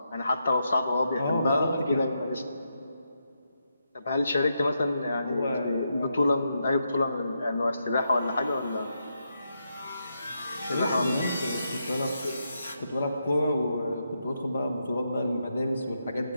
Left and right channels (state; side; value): inverted; both; correlation -0.83